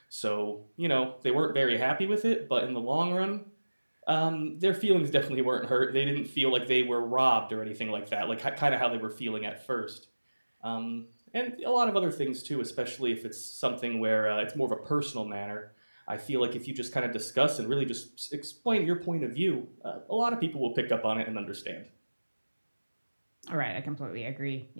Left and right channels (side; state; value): both; inverted; correlation -1.00